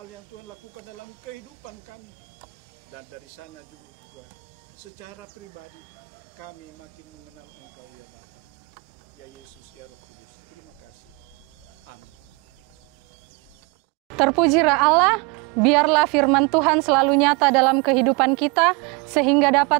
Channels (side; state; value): left; quieter; 29.8 dB